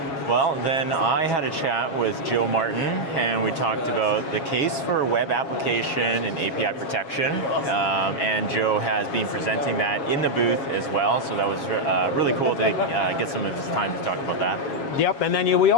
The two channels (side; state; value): right; late; 7.3 ms